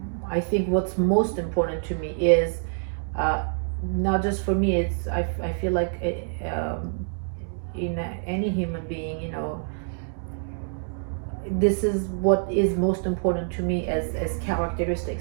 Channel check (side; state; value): left; silent; digital silence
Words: think what's most important to me is not just for me. It's I feel like in any human being, this is what is most important to me as